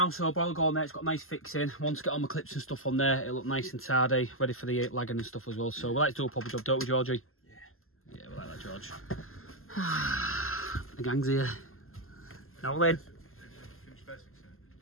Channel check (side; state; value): right; late; 0.62 ms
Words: so boiler go on there, it's got a nice fixing. Once I get all my clips and stuff on there, it'll look nice and tidy, ready for the lagging and stuff as well. So we like to do a proper job, don't we, Georgie? Yeah. Yeah, we like that, George. The gang's here. Now then.